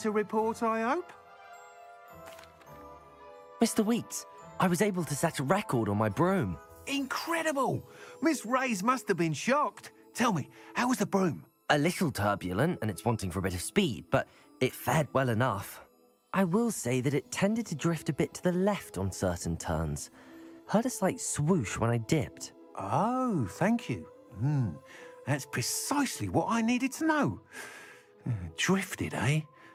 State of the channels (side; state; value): both; identical; correlation 1.00